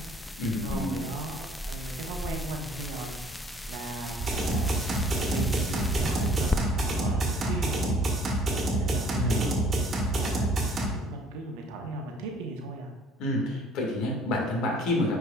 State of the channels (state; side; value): normal; both; correlation 0.56